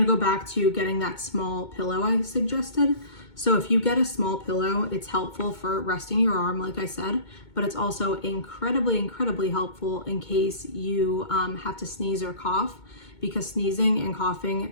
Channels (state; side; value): late; right; 2.2 ms